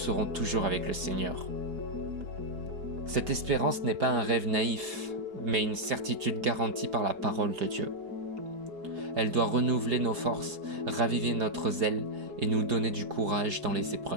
toujours avec le Seigneur. » Cette espérance n'est pas un rêve naïf, mais une certitude garantie par la parole de Dieu. Elle doit renouveler nos forces, raviver notre zèle et nous donner du courage dans les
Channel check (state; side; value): late; left; 4.7 ms